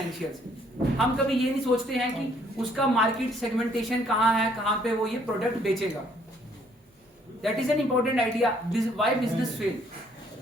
हम कभी ये नहीं सोचते हैं कि उसका मार्केट सेगमेंटेशन कहाँ है, कहाँ पे वो ये प्रोडक्ट बेचेगा. That is an important idea. Why business fail.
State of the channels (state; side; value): normal; both; correlation 0.65